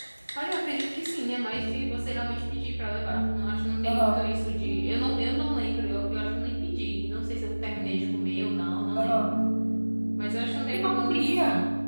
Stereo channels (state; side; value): inverted; both; correlation -1.00